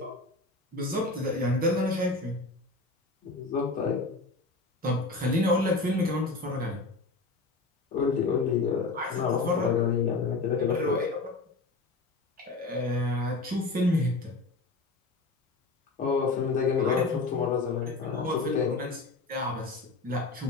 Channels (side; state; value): right; quieter; 3.4 dB